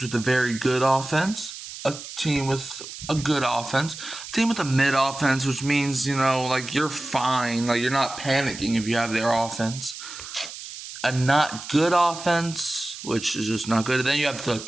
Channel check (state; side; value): noise; right; hiss, 12 dB below the sound